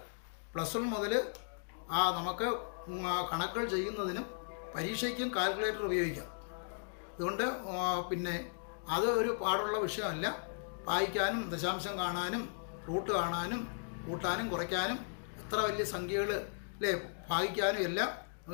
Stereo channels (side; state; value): right; silent; digital silence